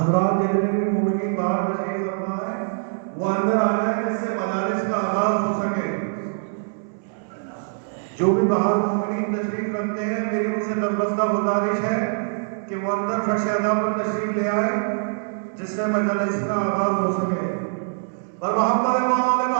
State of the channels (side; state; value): left; silent; digital silence